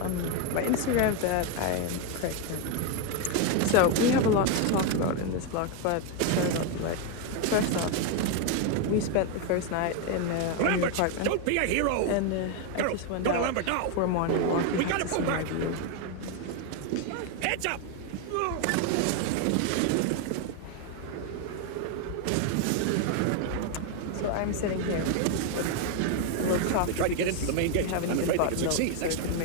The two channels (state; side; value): different; both; correlation 0.01